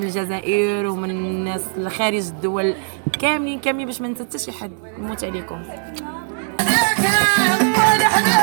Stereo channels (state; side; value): silent; left; 66 dB below the other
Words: الجزائر ومن الناس خارج الدول كاملين باش ما ننسى حتى شي حد. نموت عليكم.